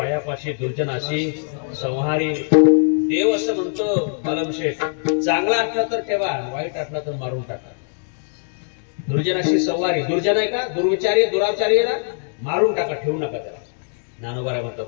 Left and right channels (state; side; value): silent; right; digital silence